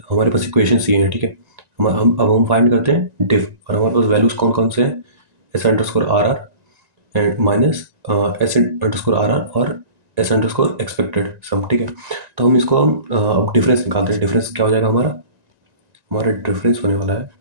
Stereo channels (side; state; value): left; late; 1.9 ms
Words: हमारे पास इक्वेशंस ये हैं, ठीक है। हम फाइंड करते हैं डिफ, और हमारे पास वैल्यूज़ कौन कौन से हैं, s_r_r एंड माइनस s_r_r और s_expected सम, ठीक है। तो हम इसको अब डिफरेंस निकालते हैं। डिफरेंस क्या हो जाएगा हमारा, हमारा डिफरेंस होने वाला है,